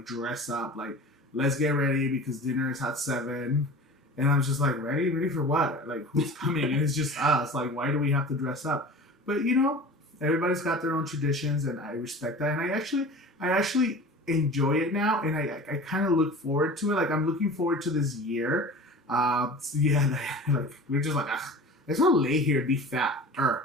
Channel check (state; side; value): normal; both; correlation 0.38